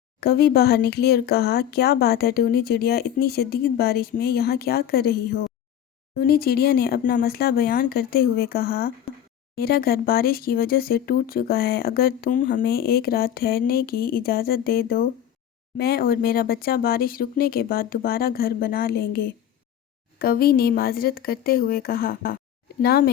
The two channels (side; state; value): right; quieter; 10.3 dB